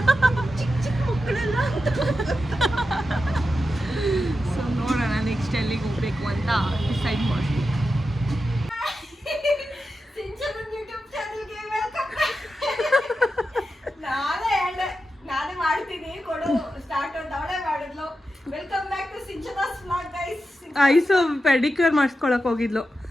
ಚಿಕ್ಕ ಮಕ್ಕಳೆಲ್ಲ. ಸೊ ನೋಡೋಣ ನೆಕ್ಸ್ಟ್ ಎಲ್ಲಿಗೆ ಹೋಗ್ಬೇಕು ಅಂತ ಡಿಸೈಡ್ ಮಾಡ್ತೀವಿ. ನಾನೇ ಮಾಡ್ತೀನಿ ಕೊಡು ಸ್ಟಾರ್ಟ್ ಅಂತ ಅವಳೇ ಮಾಡಿದ್ಲು. Welcome back to Sinchana's vlog guys. Aishu pedicure ಮಾಡಿಸ್ಕೊಳಕ್ ಹೋಗಿದ್ಲು.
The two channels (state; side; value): normal; both; correlation 0.90